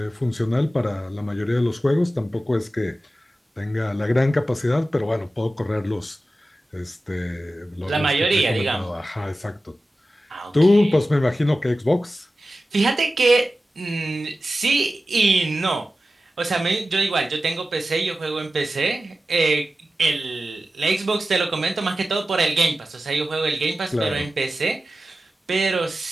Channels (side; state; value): both; normal; correlation 0.94